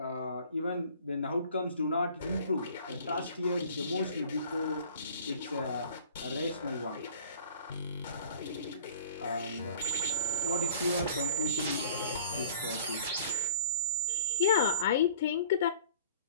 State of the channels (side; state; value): both; inverted; correlation -0.49